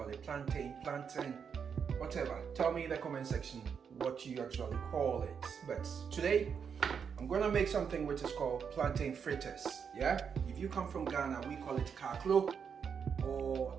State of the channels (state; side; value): quieter; left; 6.8 dB